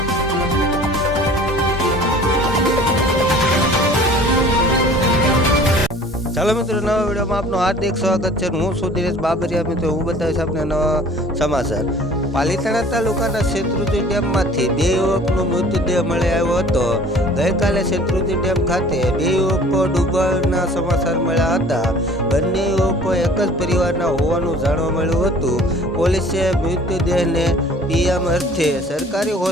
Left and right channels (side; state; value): both; normal; correlation 0.49